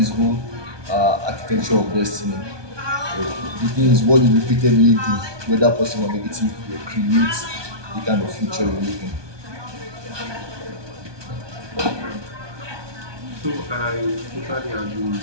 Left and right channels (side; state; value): left; late; 1.2 ms